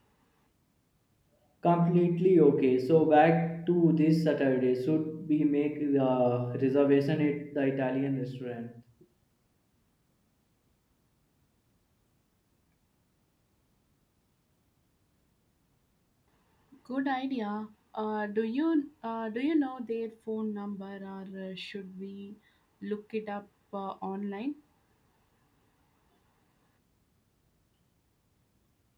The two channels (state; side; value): identical; both; correlation 1.00